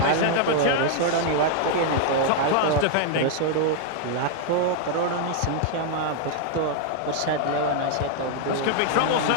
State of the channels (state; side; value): different; both; correlation 0.00